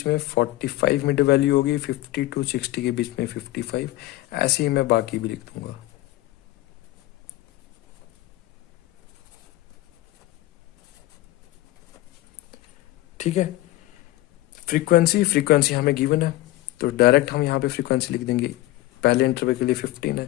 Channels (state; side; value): quieter; right; 17.0 dB